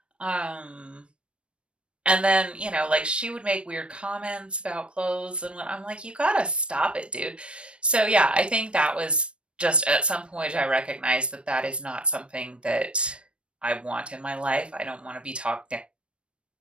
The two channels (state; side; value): late; left; 0.059 ms